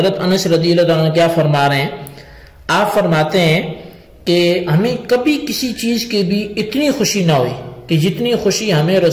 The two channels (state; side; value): identical; both; correlation 1.00